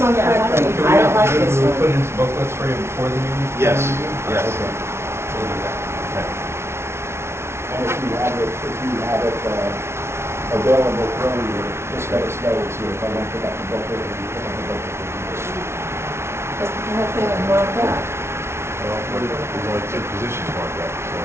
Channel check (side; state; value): left; late; 0.12 ms